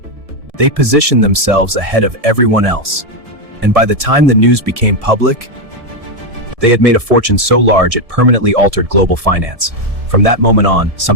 They positioned themselves ahead of everyone else, and by the time the news became public, they had made a fortune so large it permanently altered global finance. From that moment on,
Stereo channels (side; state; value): left; late; 1.7 ms